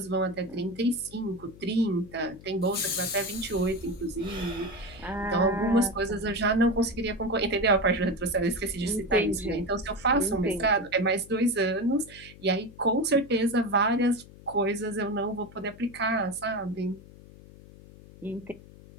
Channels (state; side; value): noise; left; hum, 20 dB below the sound